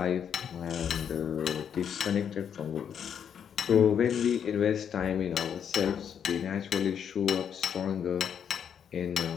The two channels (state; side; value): quieter; right; 8.2 dB